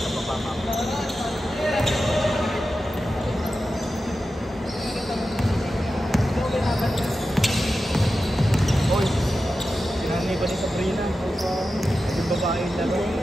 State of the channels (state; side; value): normal; both; correlation 0.92